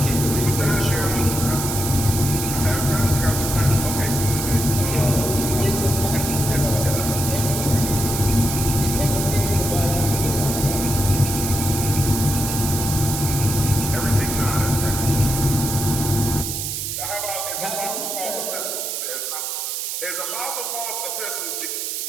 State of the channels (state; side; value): noise; right; hiss, 3 dB below the sound